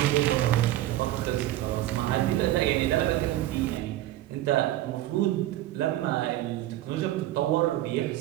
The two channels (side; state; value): left; quieter; 14.6 dB